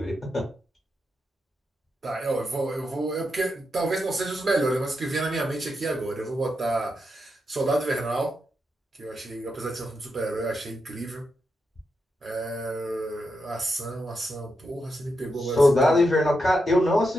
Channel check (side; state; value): both; normal; correlation 0.85